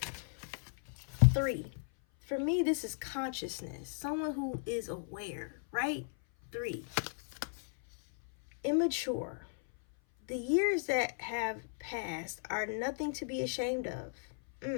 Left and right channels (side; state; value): right; silent; 54 dB below the other